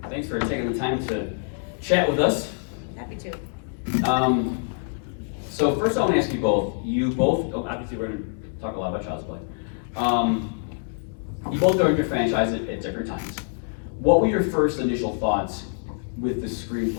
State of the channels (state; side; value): silent; right; 62 dB below the other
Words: good. Thanks for taking the time to chat with us. Happy to. So first I want to ask you both, obviously we're going to talk a lot about Child's Play. You both joined your franchise at different times. What were your first initial thoughts with the